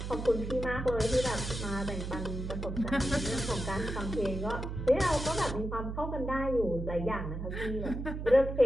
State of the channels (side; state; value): right; noise; hum, 5 dB below the sound